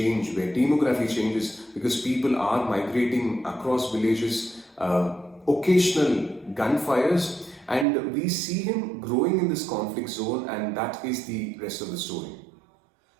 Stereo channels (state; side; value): drops out; left; at 7.9 s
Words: where demography changes because people are migrating across villages, occasional gunfires, and we see him growing in this conflict zone, and that is the rest of the story.